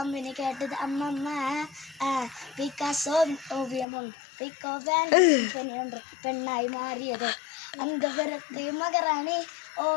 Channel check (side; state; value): right; drops out; at 3.9 s